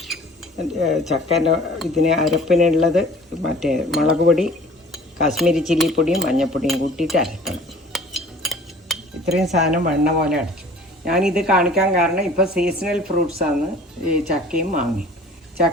ഇതിന് അരപ്പിനുള്ളത് മറ്റേ മുളക് പൊടി, കാശ്മീരി ചില്ലിപ്പൊടിയും മഞ്ഞൾപ്പൊടിയും കൂട്ടിയിട്ട് അരക്കണം. ഇത്രയും സാധനം വെണ്ണ പോലെ അടച്ചു. ഞാനിത് കാണിക്കാൻ കാരണം ഇപ്പോൾ സീസണൽ ഫ്രൂട്ട്സാണ് ഈ ചക്കയും മാങ്ങയും.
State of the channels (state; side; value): normal; both; correlation 0.47